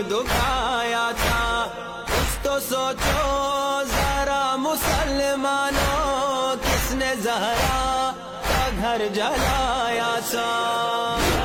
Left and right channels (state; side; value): identical; both; correlation 1.00